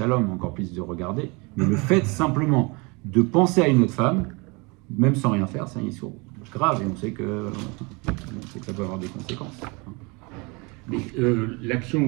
encore plus de regarder, mais le fait simplement de penser à une autre femme, même sans rien faire, c'est un issour grave et on sait que ça peut avoir des conséquences. Mais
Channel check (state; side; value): quieter; left; 28.4 dB